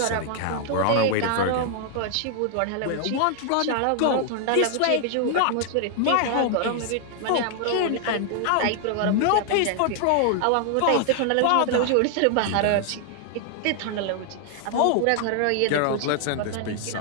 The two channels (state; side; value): different; both; correlation 0.00